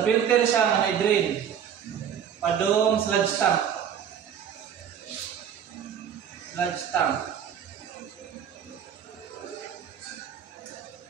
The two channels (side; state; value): left; quieter; 8.5 dB